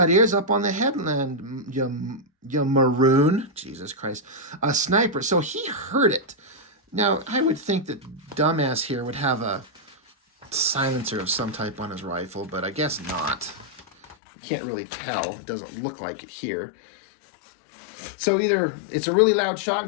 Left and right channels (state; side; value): drops out; right; at 14.2 s